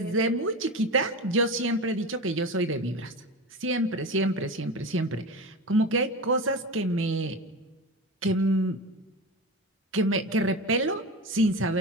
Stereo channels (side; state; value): both; normal; correlation 0.26